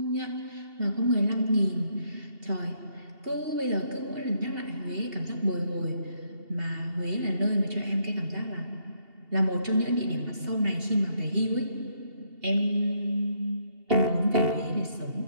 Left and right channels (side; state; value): left; late; 2.8 ms